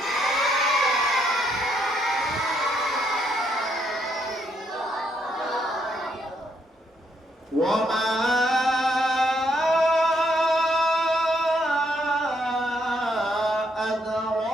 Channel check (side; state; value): both; normal; correlation 0.74